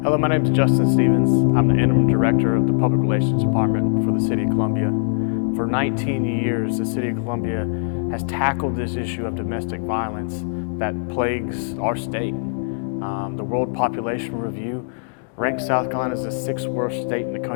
my name is Justin Stevens. I'm the Interim Director of the Public Relations Department for the City of Columbia. For 19 years, the City of Columbia has tackled this issue of domestic violence that plagues our state. The World Population Review ranks South Carolina as the 6th worst state in the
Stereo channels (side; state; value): right; silent; digital silence